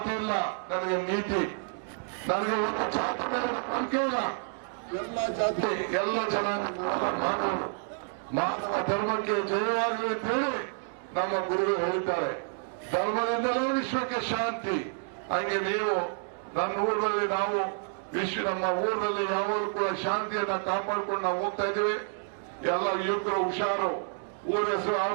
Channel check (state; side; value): silent; left; 58 dB below the other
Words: ಇಲ್ಲ, ನನಗೆ ನೀತಿ, ನನಗೆ ಒಂದು ಜಾತಿ ಮೇಲೆ ನಂಬಿಕೆ ಇಲ್ಲ. ಎಲ್ಲ ಜಾತಿ, ಎಲ್ಲ ಜನಾಂಗ, ಮಾನವ ಧರ್ಮಕ್ಕೆ ಜಯವಾಗಲಿ ಅಂತ ಹೇಳಿ ನಮ್ಮ ಗುರುಗಳು ಹೇಳಿದ್ದಾರೆ. ಧರ್ಮದಿಂದಲೇ ವಿಶ್ವಕ್ಕೆ ಶಾಂತಿ. ಹಂಗೆ ನೀವು ನನ್ನ ಊರಲ್ಲಿ, ನಾವು ನಮ್ಮ ಊರಲ್ಲಿ ಯಾವಾಗಲೂ ಕೂಡ ಶಾಂತಿಯನ್ನ ಕಾಪಾಡ್ಕೊಂಡು ನಾವು ಹೋಗ್ತಾ ಇದ್ದೀವಿ. ಎಲ್ಲ ಯುವಕರು ಹುಷಾರು, ಊರ ಹೆಸರು ಹಾಳು